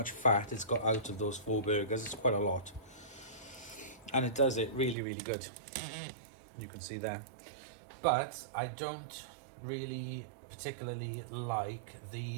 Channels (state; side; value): drops out; left; at 5.0 s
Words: fat it's got out of those 4 burgers. It's quite a lot. And it does it really, really good. You can see there. But I don't really particularly like